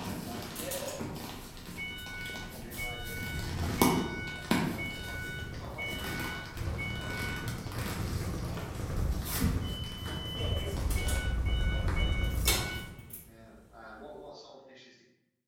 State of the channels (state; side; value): identical; both; correlation 1.00